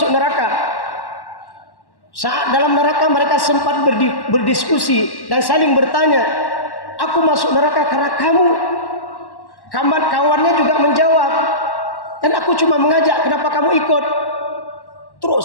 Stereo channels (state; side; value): late; right; 1.1 ms